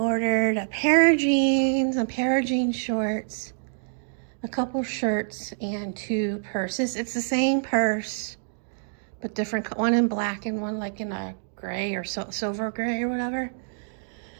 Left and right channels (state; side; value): silent; left; digital silence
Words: a pair of jeans, a pair of jean shorts, a couple shirts, and 2 purses. It's the same purse, but different, one in black and one like in a gray or silver gray or whatever.